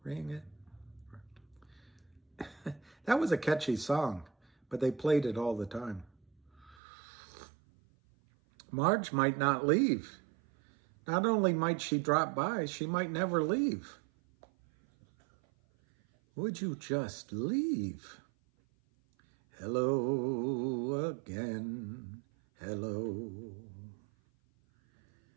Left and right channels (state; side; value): drops out; left; at 6.8 s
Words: Ring it. That was a catchy song, but they played it all the time. Marge might not leave. Not only might she drop by, she might never leave. Would you just leave? Hello again, hello.